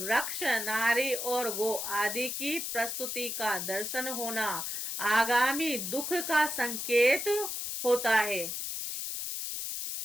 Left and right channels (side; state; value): left; noise; hiss, 4 dB below the sound